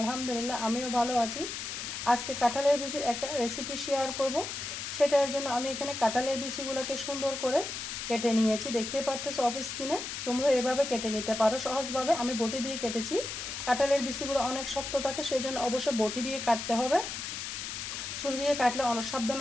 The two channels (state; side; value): noise; left; hiss, 6 dB below the sound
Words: আমিও ভালো আছি। আজকে কাঁঠালের বিচির একটা রেসিপি শেয়ার করব। সেটার জন্য আমি এখানে কাঁঠালের বিচিগুলোকে সুন্দর করে কেটে নিয়েছি, দেখতে পারতেছো অফ স্ক্রিনে। তোমরা এভাবে কেটে নিতে পারো সহজভাবে। আমি বটি দিয়ে কেটেছি। কাঁঠালের বিচিগুলো অনেক শক্ত থাকে, সেজন্য অবশ্যই বটি দিয়ে কাটতে হবে। ছুরি দিয়ে কাটলে